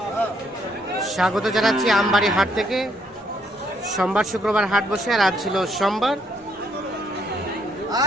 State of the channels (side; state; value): both; normal; correlation 0.71